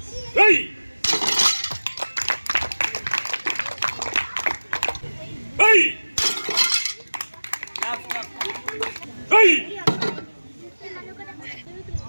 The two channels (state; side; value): inverted; both; correlation -1.00